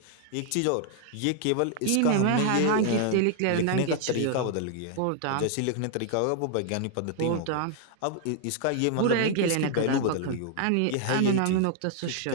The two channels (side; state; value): both; different; correlation 0.00